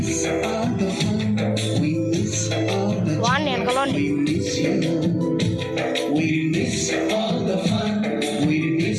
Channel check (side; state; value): both; identical; correlation 1.00